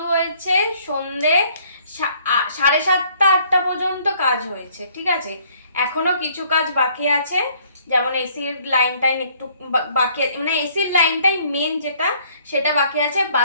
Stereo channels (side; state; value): both; inverted; correlation -0.62